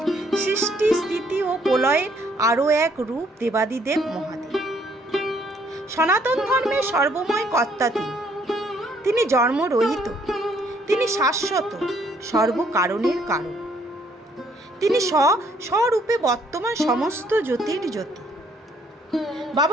সৃষ্টি স্থিতি ও প্রলয়ের আরও এক রূপ দেবাদিদেব মহাদেব। সনাতন ধর্মের সর্বময় কর্তা তিনি জন্মরহিত, তিনি শাশ্বত, সর্বকারণের কারণ। তিনি স্বরূপে বর্তমান সমস্ত জ্যোতির জ্যোতি।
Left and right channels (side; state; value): both; normal; correlation 0.66